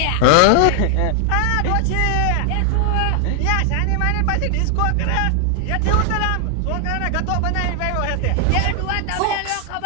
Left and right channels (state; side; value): different; both; correlation 0.00